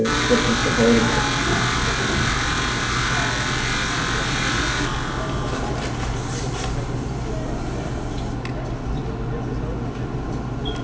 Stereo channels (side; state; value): both; identical; correlation 1.00